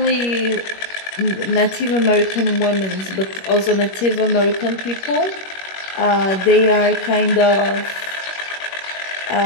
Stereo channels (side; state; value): right; late; 21 ms